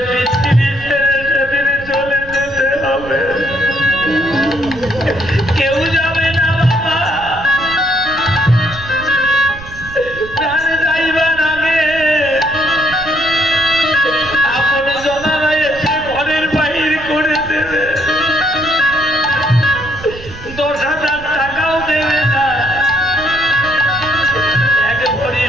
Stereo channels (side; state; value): right; noise; rumble, 15 dB below the sound